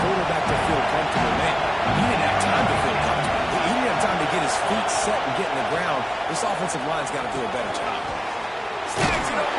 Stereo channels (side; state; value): both; identical; correlation 1.00